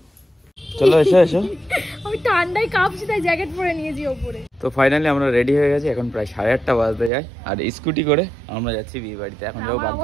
চলো এসো এসো। আমি ঠান্ডায় কাঁপছি তাই জ্যাকেট পরে নিয়েছি উপরে। তো ফাইনালি আমরা রেডি হয়ে গেছি, এখন প্রায় 8:30 বাজতে যায়, আর স্কুটি করে আমরা যাচ্ছি বিয়ে বাড়িতে। এখন যাবো বাগলাতে।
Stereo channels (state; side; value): drops out; left; at 7.1 s